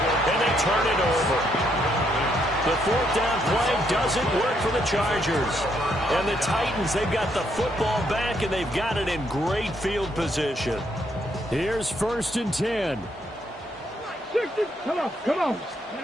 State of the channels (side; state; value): both; normal; correlation 0.74